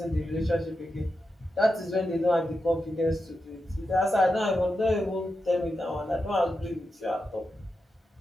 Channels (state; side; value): normal; both; correlation 0.88